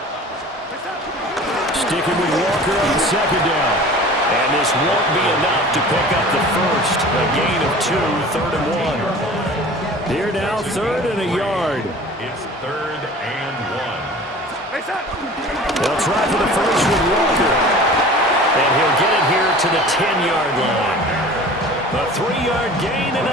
Sticking with Walker on 2nd down. And this won't be enough to pick up the first. A gain of 2, 3rd and 1. Here now, 3rd and a yard. It's 3rd and 1. They'll try for the first with Walker. And he'll get it here to the 10-yard line. A 3-yard gain and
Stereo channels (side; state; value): both; normal; correlation 0.42